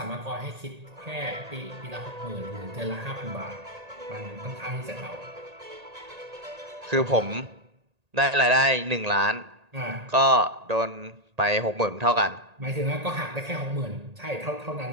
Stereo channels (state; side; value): late; left; 1.8 ms